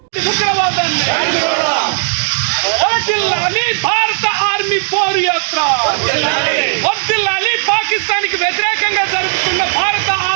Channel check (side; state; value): left; silent; digital silence